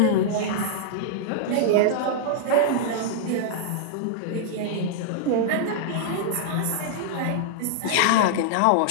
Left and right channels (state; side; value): different; both; correlation -0.01